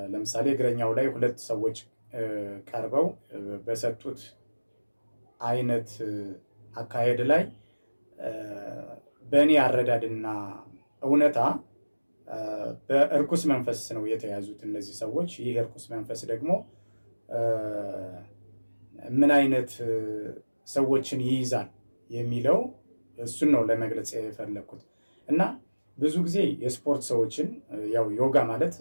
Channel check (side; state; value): both; inverted; correlation -1.00